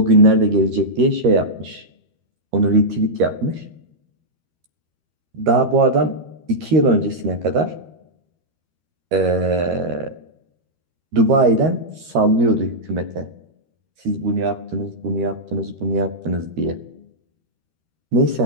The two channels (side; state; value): left; late; 13 ms